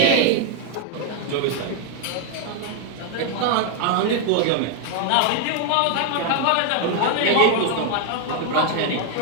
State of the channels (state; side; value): different; both; correlation 0.00